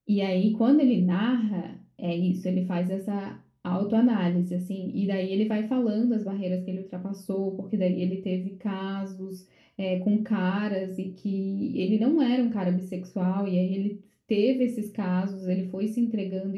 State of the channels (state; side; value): identical; both; correlation 1.00